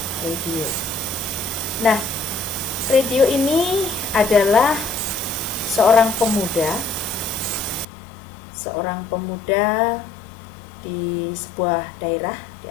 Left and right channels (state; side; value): drops out; right; at 7.9 s